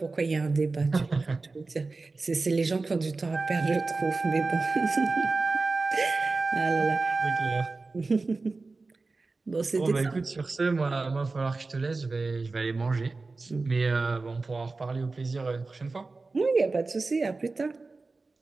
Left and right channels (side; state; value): left; quieter; 3.7 dB